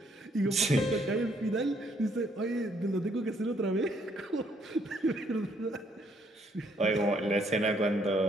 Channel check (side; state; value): both; normal; correlation 0.68